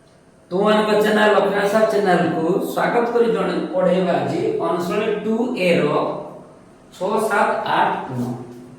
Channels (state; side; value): identical; both; correlation 1.00